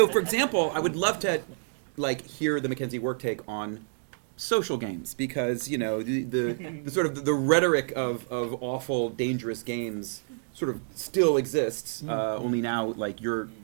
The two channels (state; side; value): silent; left; digital silence